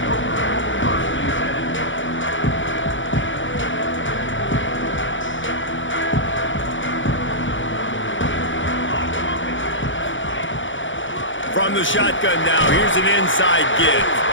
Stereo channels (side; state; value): right; late; 0.56 ms